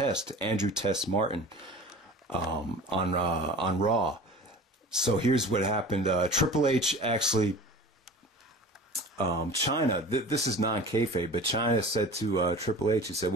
Andrew Test Martin, on Raw. So here's what happened. Triple H actually, China, this is non-kayfabe, but China said to Triple H, he said,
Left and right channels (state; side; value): normal; both; correlation 0.39